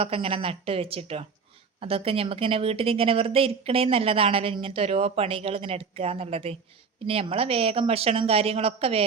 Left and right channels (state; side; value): quieter; left; 5.5 dB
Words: ഇങ്ങനെ നട്ട് വെച്ചിട്ടോ. അതൊക്കെ നമുക്കിങ്ങനെ വീട്ടിലിങ്ങനെ വെറുതെ ഇരിക്കണേ നല്ലതാണല്ലോ, ഇങ്ങനത്തെ ഓരോ പണികൾ ഇങ്ങനെ എടുക്കുക എന്നുള്ളത്. പിന്നെ നമ്മളെ വേഗം ഭക്ഷണം കാര്യങ്ങളൊക്കെ